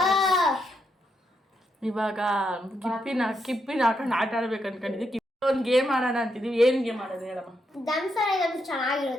ಇವಾಗ ಕಿಪ್ಪಿನ ಹಾಕೊಂಡು ಆಟ ಆಡ್ಬೇಕು ಅನ್ಕೊಂಡಿದ್ವಿ. ಕಿಪ್ಪಿ ಒಂದು ಗೇಮ್ ಆಡೋಣ ಅಂತಿದ್ವಿ. ಏನ್ ಗೇಮ್ ಆಡೋದು ಹೇಳಮ್ಮ? ದಮ್ಸರ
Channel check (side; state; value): both; normal; correlation 0.81